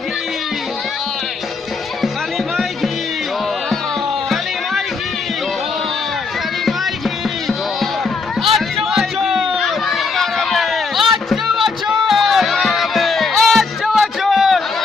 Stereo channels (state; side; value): quieter; right; 4.4 dB